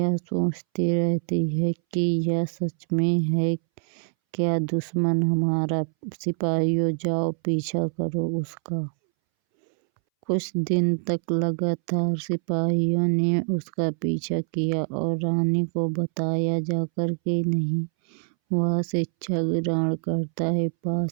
सोचती रहती है कि यह सच में है क्या दुश्मन हमारा। सिपाहियों जाओ पीछा करो उसका। कुछ दिन तक लगातार सिपाहियों ने उसका पीछा किया और रानी को बताया जाकर कि नहीं, वह शिक्षा ग्रहण करता है,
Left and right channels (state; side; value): silent; left; 62 dB below the other